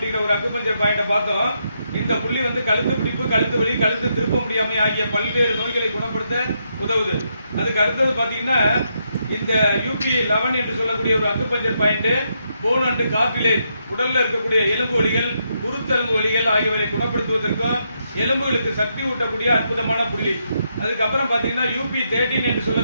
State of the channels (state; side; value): inverted; both; correlation -0.80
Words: ஒரு அக்குபஞ்சர் பாயிண்ட பார்த்தோம். இந்த புள்ளி வந்து கழுத்து பிடிப்பு, கழுத்து வலி, கழுத்து திருப்ப முடியாமை ஆகிய பல்வேறு நோய்களை குணப்படுத்த உதவுது. அதுக்கு அடுத்தது பாத்தீங்கன்னா இந்த UP11 என்று சொல்லக்கூடிய ஒரு acupuncture point phone and cartilage, உடல்ல இருக்கக்கூடிய எலும்பு வலிகள், குருத்தெலும்பு வலிகள் ஆகியவற்றை குணப்படுத்துவதற்கும் எலும்புகளுக்கு சக்தி ஊட்டக்கூடிய அற்புதமான புள்ளி. அதுக்கப்புறம் பாத்தீங்கன்னா UP13 என்று